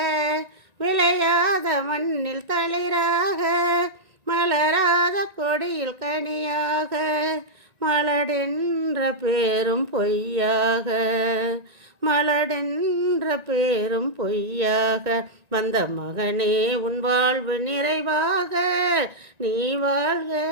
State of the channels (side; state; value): left; late; 1.9 ms